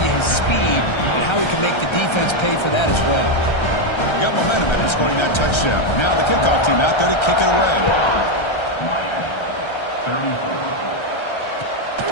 you his speed and how he can make the defense pay for that as well. Got momentum after scoring that touchdown. Now the kickoff team out there to kick it away.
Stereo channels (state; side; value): late; right; 1.3 ms